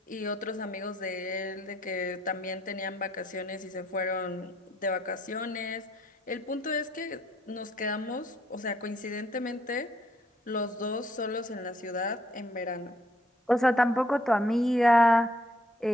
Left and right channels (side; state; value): both; normal; correlation 0.68